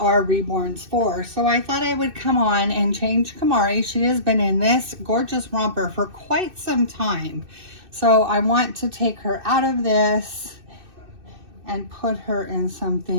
reborns for? So I thought I would come on and change Camari. She has been in this gorgeous romper for quite some time. So I want to take her out of this and put her in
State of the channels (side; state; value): left; late; 2.6 ms